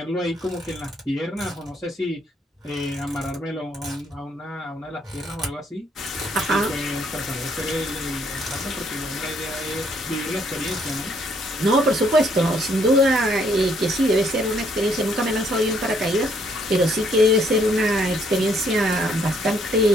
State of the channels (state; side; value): normal; both; correlation 0.68